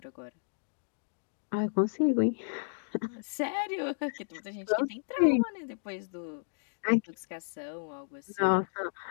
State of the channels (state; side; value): silent; right; digital silence